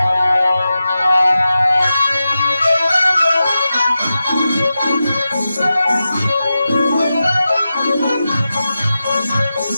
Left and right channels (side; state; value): both; inverted; correlation -0.92